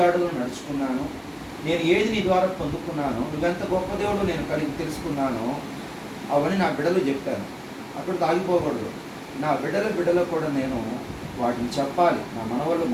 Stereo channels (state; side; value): identical; both; correlation 1.00